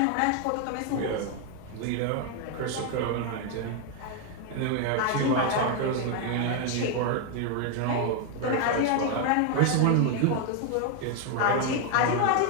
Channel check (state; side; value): different; both; correlation 0.01